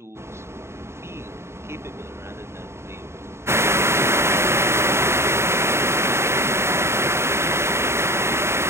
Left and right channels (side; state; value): left; late; 0.13 ms